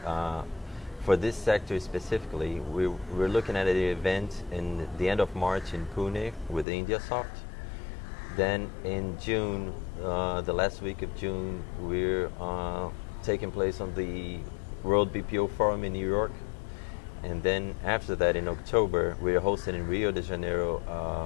for this sector specifically, we're looking at an event in the end of March in Pune with IndiaSoft. Then in June, the last week of June, we're taking place on the World BPO Forum in New York. And then after that, in October, we're hosting in Rio de Janeiro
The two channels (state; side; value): drops out; right; at 6.7 s